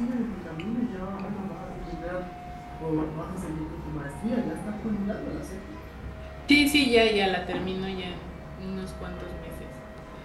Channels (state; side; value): identical; both; correlation 1.00